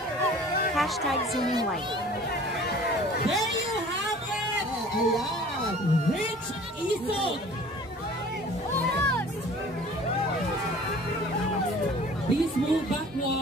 #Zooming Light. There you have it! Rich Isog! Please move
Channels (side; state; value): both; normal; correlation 0.47